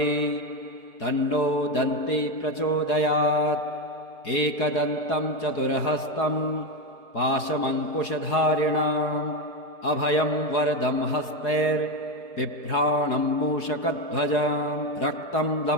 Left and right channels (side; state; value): right; late; 4.8 ms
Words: तन्नो दन्ती प्रचोदयात्। एकदन्तं चतुर्हस्तं पाशमङ्कुशधारिणम् अभयं वरदं हस्तैर्बिभ्राणं मूषकध्वजं रक्तं